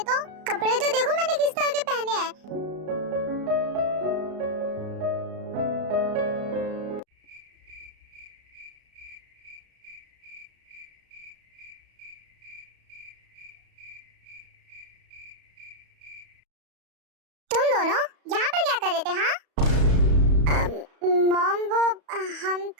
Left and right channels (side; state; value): left; late; 34 ms